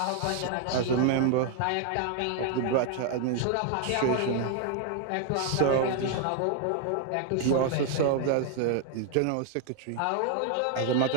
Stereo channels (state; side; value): different; both; correlation 0.00